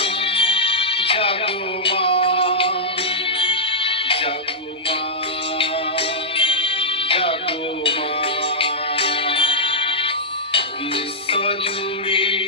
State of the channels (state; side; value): normal; both; correlation -0.10